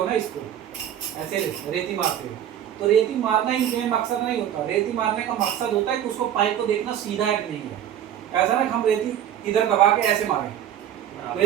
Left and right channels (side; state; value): left; quieter; 10.5 dB